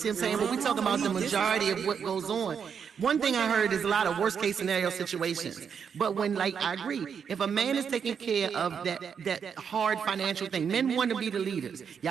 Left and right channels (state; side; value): quieter; left; 7.0 dB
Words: what I'm saying? But we talk about the majority of what goes on. One thing I heard is a lot of worst case scenario situations. But when, like, I agree, if a man is taking care of that hard financial thing, men want to be the leaders.